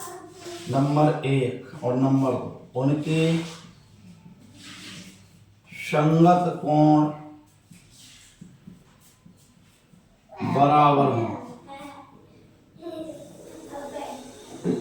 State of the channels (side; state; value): both; identical; correlation 1.00